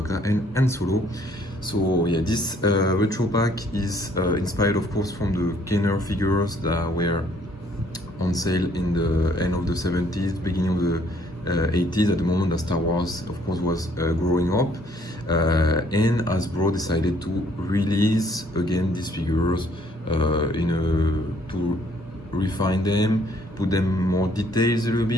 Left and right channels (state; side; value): normal; both; correlation 0.63